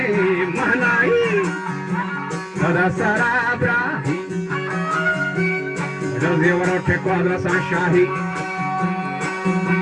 महनाई सदा सराबरा जल्दी वरों ठेको अदरसा शाही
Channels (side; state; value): both; identical; correlation 1.00